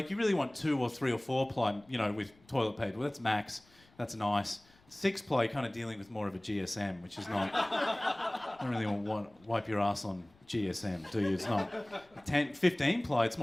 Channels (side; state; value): left; noise; rumble, 30 dB below the sound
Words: you really want 2 or 3 or 4 ply, you know, with toilet paper. Well, that's max. That's nice. 6 ply, you're kind of dealing with more of a GSM, which is not... I don't really want to wipe your ass on GSM, do you? It's not... 15 ply, it's